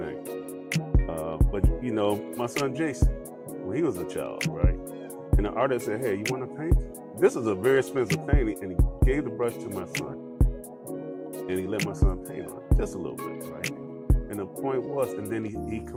But my son Jason, when he was a child, right? And the artist said, "Hey, you want to paint? This is a very expensive painting," and he gave the brush to my son, and he let my son paint on it just a little bit, right? And the point was, and then he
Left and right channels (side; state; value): both; identical; correlation 1.00